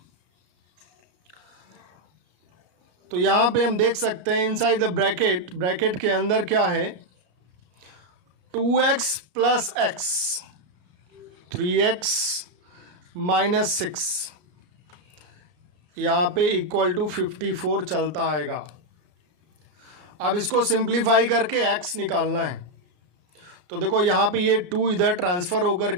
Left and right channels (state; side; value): late; left; 33 ms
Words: तो यहाँ पे हम देख सकते हैं इनसाइड द ब्रैकेट, ब्रैकेट के अंदर क्या है 2x plus x, 3x minus 6, यहाँ पे इक्वल टू 54 चलता आएगा। अब इसको सिंप्लीफाई करके x निकालना है। तो देखो यहाँ पे ये 2 इधर ट्रांसफ़र होकर